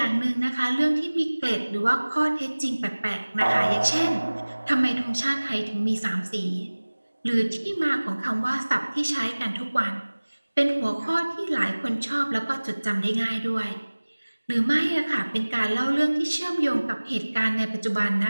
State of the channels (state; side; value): inverted; both; correlation -1.00